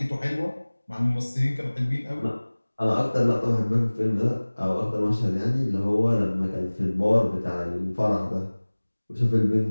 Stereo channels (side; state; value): both; inverted; correlation -1.00